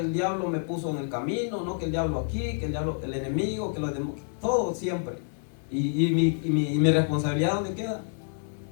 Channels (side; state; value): right; silent; 59 dB below the other